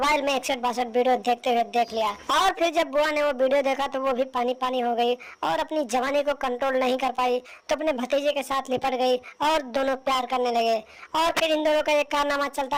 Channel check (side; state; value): both; identical; correlation 1.00